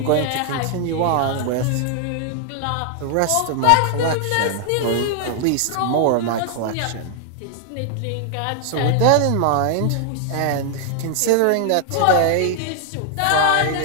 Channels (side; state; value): both; different; correlation 0.00